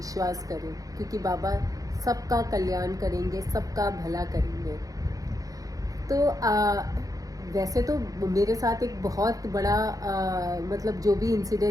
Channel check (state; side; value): late; left; 0.17 ms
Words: करें, क्योंकि बाबा सबका कल्याण करेंगे, सबका भला करेंगे। तो वैसे तो मेरे साथ एक बहुत बड़ा मतलब जो भी